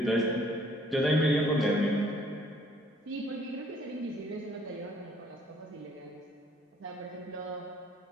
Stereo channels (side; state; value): both; normal; correlation 0.61